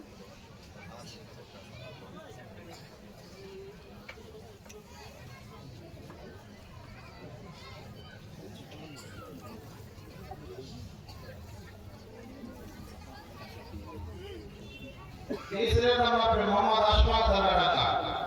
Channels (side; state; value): both; identical; correlation 1.00